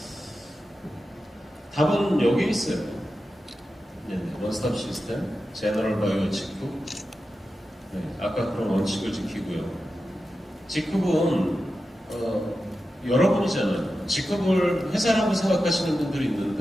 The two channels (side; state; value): both; normal; correlation 0.91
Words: 답은 여기 있어요. 원스톱 시스템, 제너럴 바이오 직급. 아까 그런 원칙을 지키고요. 직급은 여러분이잖아요. 직급을 회사라고 생각하시는 분들이